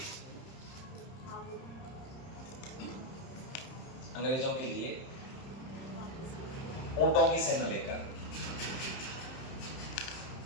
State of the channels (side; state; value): right; late; 31 ms